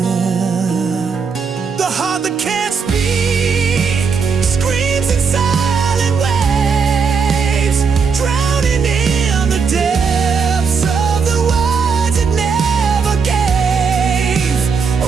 The heart that can't speak screams in silent waves, drowning in the depths of the words it never gave. A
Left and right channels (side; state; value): left; quieter; 5.6 dB